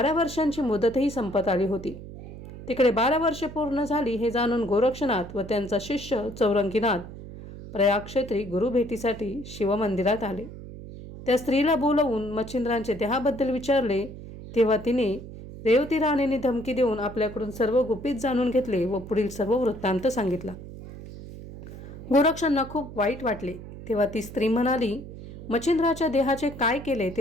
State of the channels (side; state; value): right; noise; hum, 13 dB below the sound